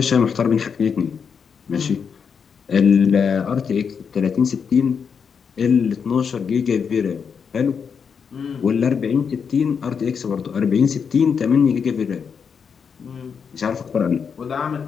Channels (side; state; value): right; quieter; 6.5 dB